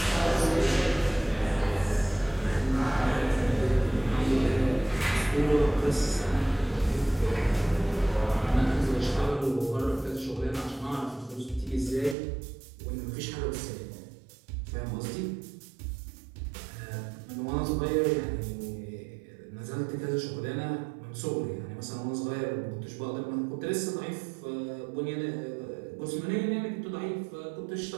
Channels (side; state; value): left; drops out; at 12.2 s